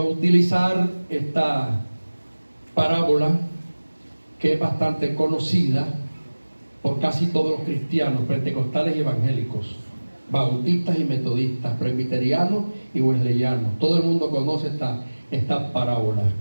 utilizar esta parábola que es bastante conocida por casi todos los cristianos, pentecostales y evangélicos, bautistas y metodistas, presbiterianos y wesleyanos. Todo el mundo conoce esta parábola.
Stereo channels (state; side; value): inverted; both; correlation -1.00